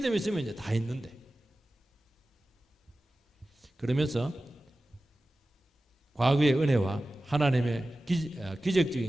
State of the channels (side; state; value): both; normal; correlation 0.95